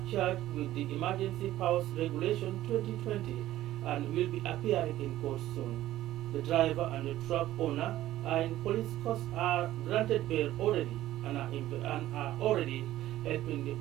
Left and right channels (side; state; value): left; quieter; 14.4 dB